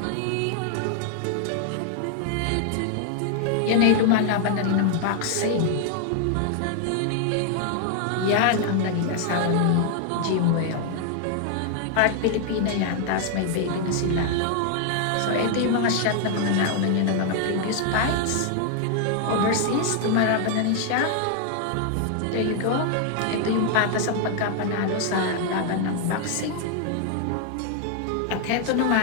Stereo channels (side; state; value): both; different; correlation 0.00